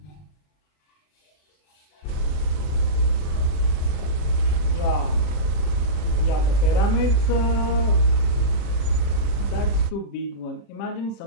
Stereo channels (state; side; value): late; right; 39 ms